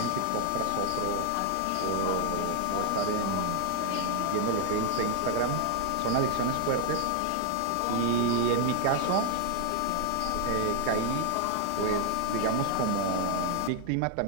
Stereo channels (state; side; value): different; both; correlation -0.01